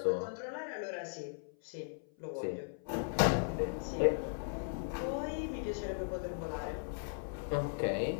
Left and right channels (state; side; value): silent; right; 53 dB below the other